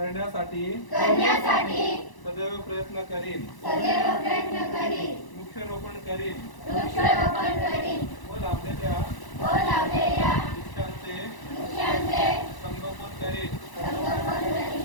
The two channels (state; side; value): late; right; 1.0 ms